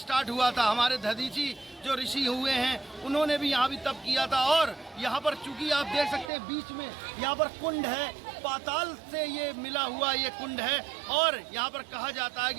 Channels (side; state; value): left; drops out; at 6.3 s